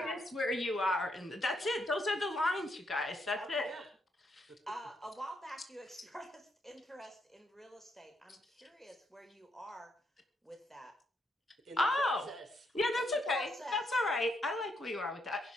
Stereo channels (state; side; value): normal; both; correlation 0.77